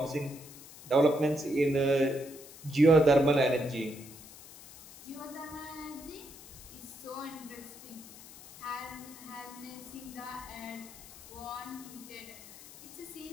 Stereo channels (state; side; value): noise; left; hiss, 17 dB below the sound